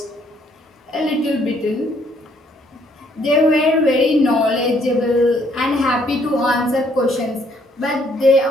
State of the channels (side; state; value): both; normal; correlation 0.67